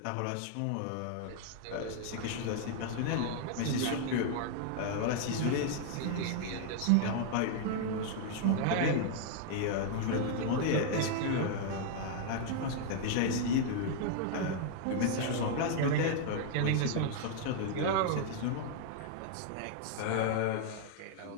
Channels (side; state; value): both; different; correlation -0.01